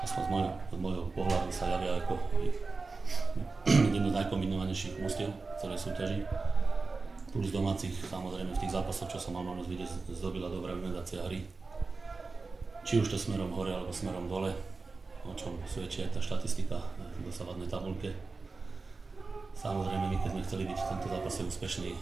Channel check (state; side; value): quieter; left; 4.0 dB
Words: z môjho pohľadu, sa javia ako jedno z najkombinovanejších mústiev celej súťaži. Plus domácich, samozrejme v tých zápasoch, čo som mal možnosť vidieť, zdobila dobrá organizácia hry. Či už to smerom hore alebo smerom dole, o čom svedčí aj tá štatistika v dosávadnej tabuľke. Samozrejme, my keď sme chceli byť v tomto zápase úspešní,